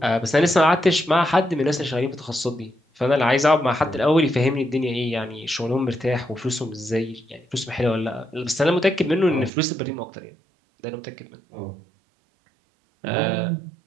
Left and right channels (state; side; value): drops out; left; at 9.5 s